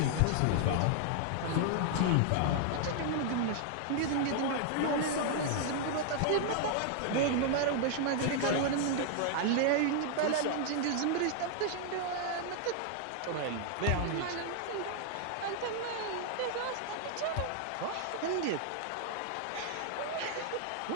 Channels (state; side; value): different; both; correlation 0.00